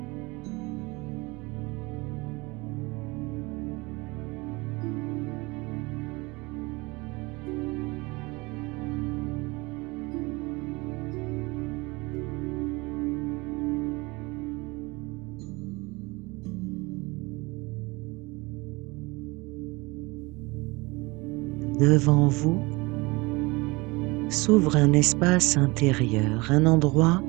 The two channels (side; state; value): left; quieter; 24.3 dB